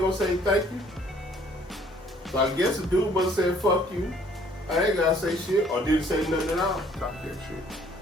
gonna say thank you? So I guess the dude must have said, fuck you. I ain't gotta say shit, or didn't say nothing at all. Talk that shit.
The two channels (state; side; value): normal; both; correlation 0.60